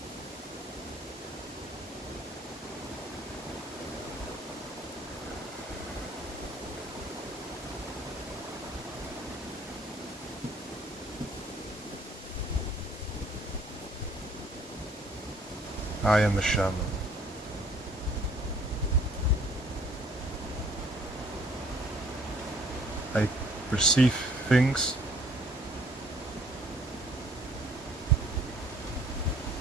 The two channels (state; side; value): normal; both; correlation 0.59